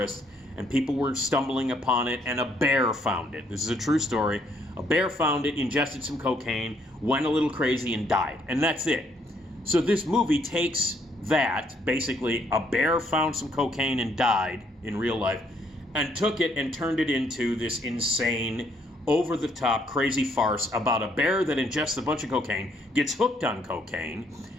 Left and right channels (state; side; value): normal; both; correlation 0.69